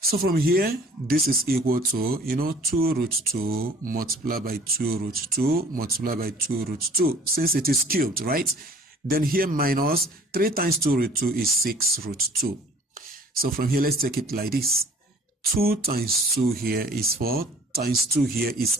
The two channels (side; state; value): both; normal; correlation 0.51